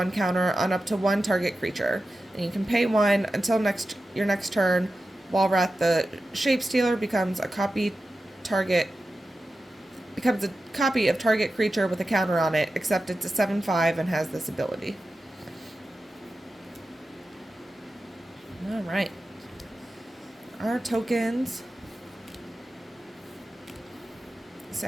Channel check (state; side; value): normal; both; correlation 0.93